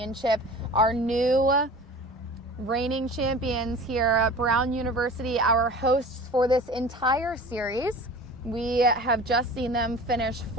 Our new reigning champions here at Brown University, our hosts for this entire series. We have just seen them finish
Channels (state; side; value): normal; both; correlation 0.40